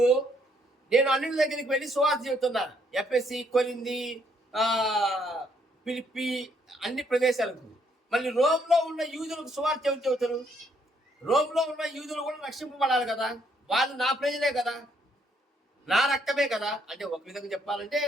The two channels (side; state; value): both; normal; correlation 0.70